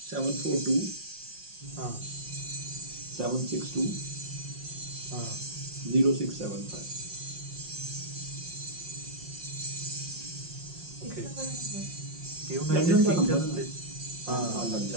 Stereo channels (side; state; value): left; late; 5.6 ms